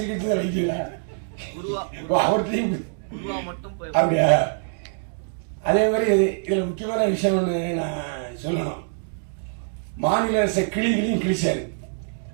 கட்சி விளைக்கீங்களா? அவர் தெரியும் அப்படியா? அதே மாதிரி இதுல முக்கியமான விஷயம் ஒண்ணு நான் சொல்லணும். மாநில அரசு கிளிகளையும் கிழிச்சாரு.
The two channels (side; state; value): left; silent; digital silence